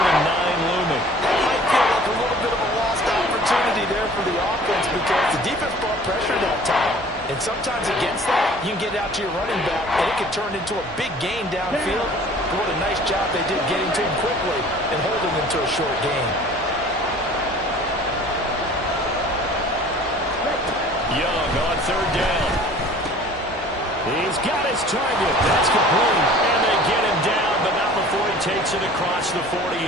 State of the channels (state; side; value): normal; both; correlation 0.48